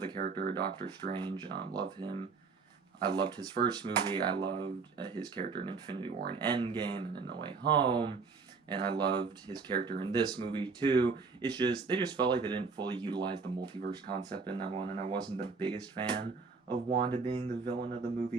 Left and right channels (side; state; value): left; quieter; 4.7 dB